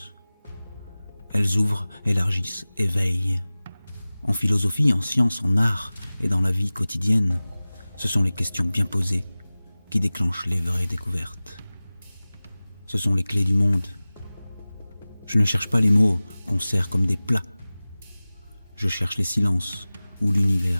Elles ouvrent, élargissent, éveillent. En philosophie, en science, en art et dans la vie quotidienne, ce sont les questions bien posées qui déclenchent les vraies découvertes. Ce sont les clés du monde. Je ne cherche pas les mots qu'on sert comme des plats. je cherche les silences où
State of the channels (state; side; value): inverted; both; correlation -0.99